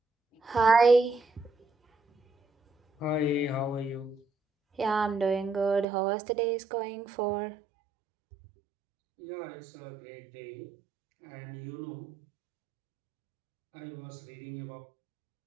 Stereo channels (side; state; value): left; drops out; at 5.9 s